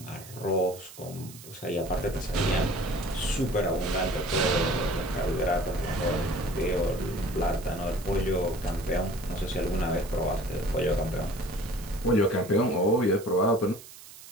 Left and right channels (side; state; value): right; noise; hiss, 17 dB below the sound